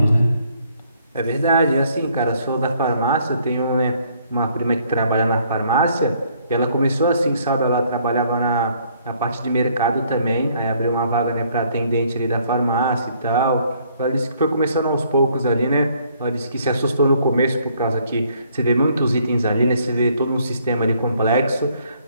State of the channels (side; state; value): both; inverted; correlation -0.65